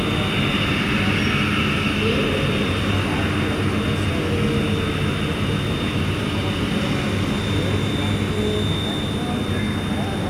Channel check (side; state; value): both; identical; correlation 1.00